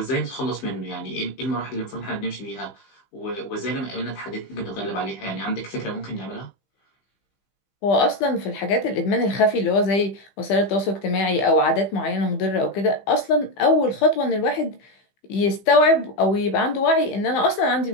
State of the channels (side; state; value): right; late; 15 ms